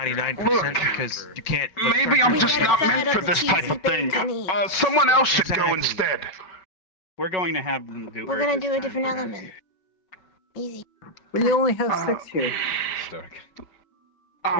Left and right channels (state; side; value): late; right; 5.3 ms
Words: Look, because you can't. Maybe I'm just not meant for this type of thing. Someone else should go Exactly. instead. We're going to have them do We're Earth gonna this do a time, different perhaps. element. Easy. We only have 6 here. Stark.